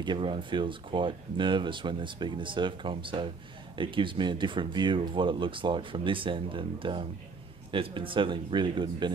everyone feels quite nervous when they're speaking to Surfcom, so it gives me a different view of what it looks like from this end, and it's been certainly really good and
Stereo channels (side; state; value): left; quieter; 4.6 dB